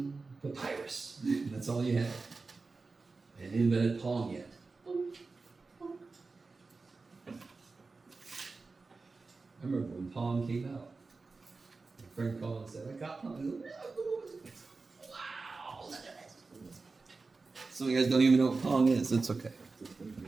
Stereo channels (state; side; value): quieter; left; 4.0 dB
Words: papyrus, that's all you had. And invented Pong yet. I remember when Pong came out. My friend called and said, I got Pong. I go, wow, look at this. Some of you guys don't even know what Pong is. It's okay.